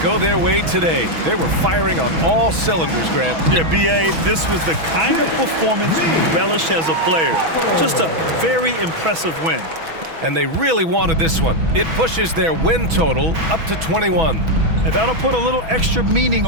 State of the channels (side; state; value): left; late; 6.1 ms